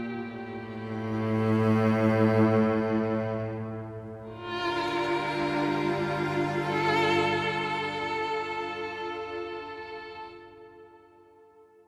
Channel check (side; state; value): both; identical; correlation 1.00